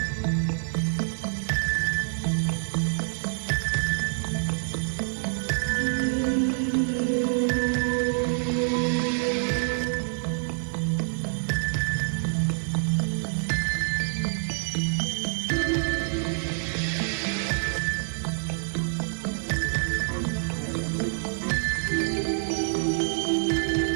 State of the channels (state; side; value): silent; left; digital silence